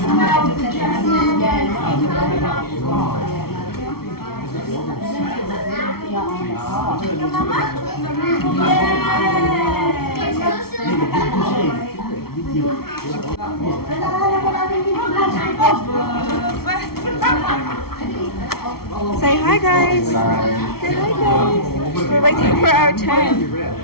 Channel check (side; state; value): right; late; 0.94 ms